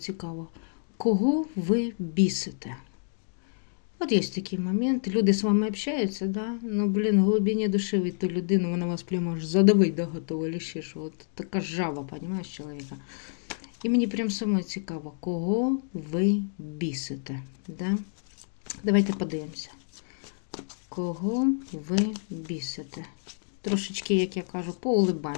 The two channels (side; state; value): right; silent; digital silence